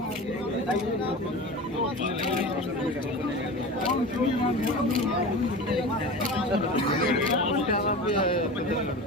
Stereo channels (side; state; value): both; normal; correlation 0.31